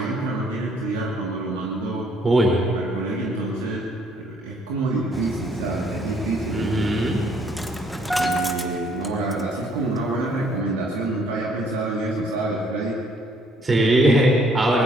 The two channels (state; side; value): normal; both; correlation 0.64